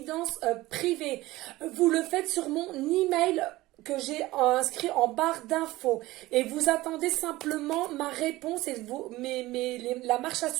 privées, vous le faites sur mon email que j'ai inscrit en barre d'infos, et vous attendez simplement ma réponse et la marche à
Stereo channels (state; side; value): quieter; left; 18.3 dB